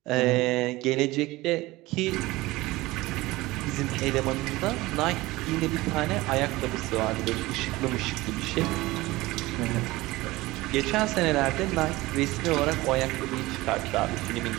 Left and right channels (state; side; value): quieter; left; 19.6 dB